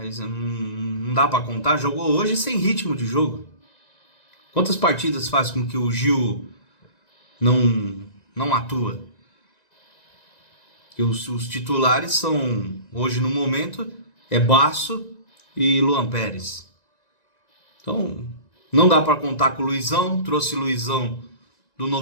não dá para contar. Jogou hoje sem ritmo de jogo. Quantas partidas faz com que o Gil não atua? E os titulares são, hoje no momento, Basso e Luan Pérez. Então, não dá para contar com o Luizão. Trouxe Luizão do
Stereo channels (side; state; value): right; late; 1.9 ms